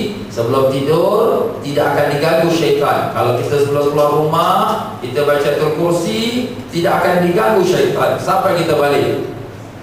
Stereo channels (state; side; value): identical; both; correlation 1.00